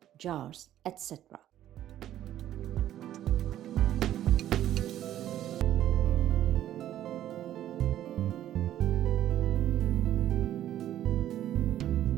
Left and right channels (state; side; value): quieter; left; 12.2 dB